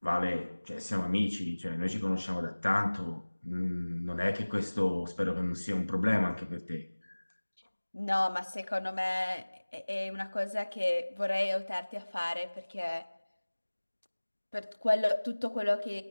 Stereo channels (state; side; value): inverted; both; correlation -1.00